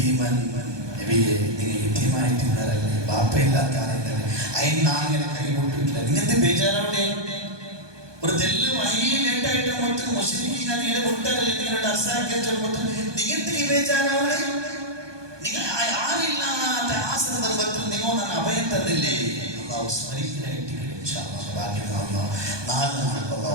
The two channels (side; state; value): left; late; 1.2 ms